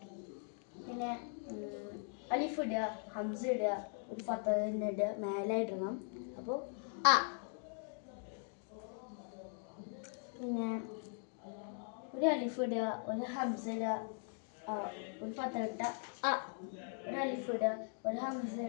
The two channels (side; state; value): right; silent; 51 dB below the other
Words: പിന്നെ അലിഫ് ഇടുക, ഹംസ ഇടുക, ഒരു ഫത്ത തന്നെ ഇടുക, മേലെ ഇടണം. അപ്പോൾ അ. പിന്നെ ഒരു അലിഫ് ഇടുക, ഒരു ഹംസ ഇടുക, ഒരു ഫത്ത ഇട്ട അ. ഒരു അലിഫ് ഇടുക, ഒരു ഹംസ